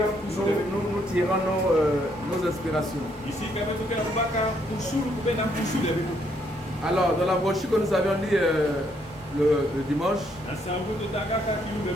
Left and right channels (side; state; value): both; normal; correlation 0.72